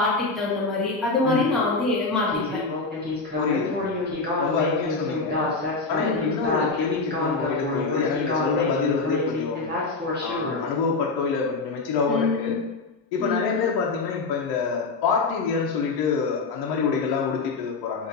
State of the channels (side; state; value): right; quieter; 3.9 dB